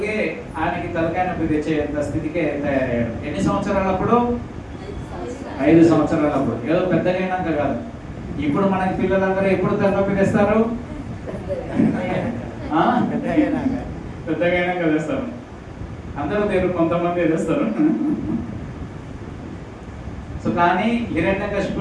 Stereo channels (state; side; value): identical; both; correlation 1.00